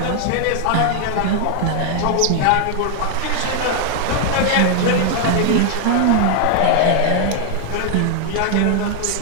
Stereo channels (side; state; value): both; different; correlation 0.00